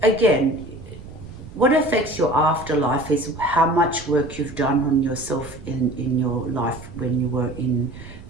again, what affects your afterlife is how much work you've done on yourself in your life when you were in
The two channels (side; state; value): right; noise; rumble, 16 dB below the sound